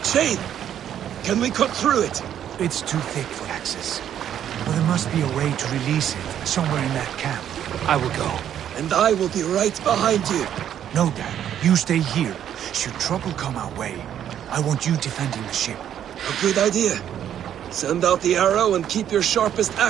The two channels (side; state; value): left; quieter; 10.1 dB